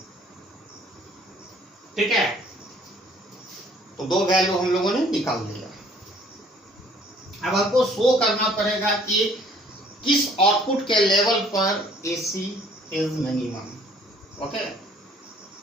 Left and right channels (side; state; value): both; normal; correlation 0.58